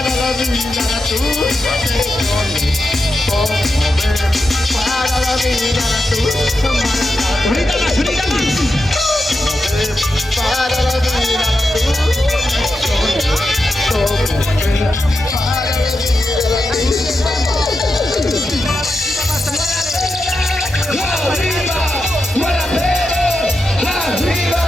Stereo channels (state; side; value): normal; both; correlation 0.88